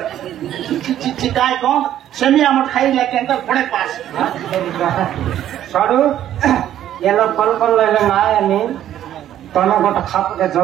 চিকায় কোন সেমি আমট খাই লাগে একটা পড়ে পাস সরু এলো কল কল লাইলে না আমি তনে গোটা খাপকে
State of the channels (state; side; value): quieter; left; 11.6 dB